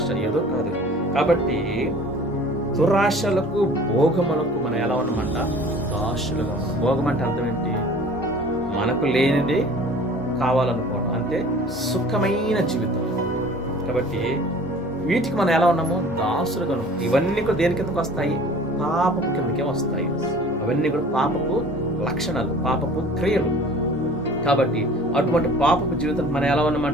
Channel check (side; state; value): both; normal; correlation 0.47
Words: ఏదో కాదు. కాబట్టి దురాశలకు, భోగములకు మనం ఎలా ఉన్నామంట, దాసులుగా ఉన్నాం. భోగం అంటే అర్థం ఏంటి? మనకు లేనిది కావాలనుకోవటం, అంటే సుఖమైన జీవితం. కాబట్టి వీటికి మనం ఎలా ఉన్నాము, దాసులుగా ఉన్నాం. ఇవన్నీ కూడా దేని కిందకు వస్తాయి? పాపపు కిందకే వస్తాయి. అవన్నీ కూడా పాపపు లక్షణాలు, పాపపు క్రియలు. కాబట్టి అటువంటి పాపపు జీవితం మనం ఎలా